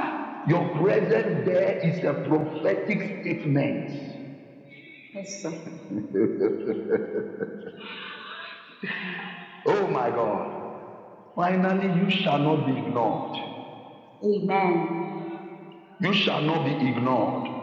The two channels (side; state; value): both; identical; correlation 1.00